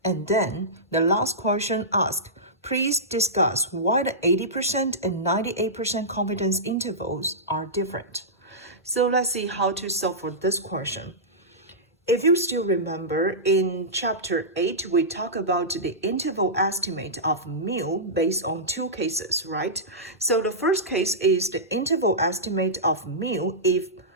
And then the last question asks, please discuss why the 80% and 98% confidence intervals are different. So let's see how to solve for this question. If you still remember, in chapter 8, we talk about the interval estimate of mu based on 2 cases, right? So the first case is the interval estimate of mu if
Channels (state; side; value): normal; both; correlation -0.15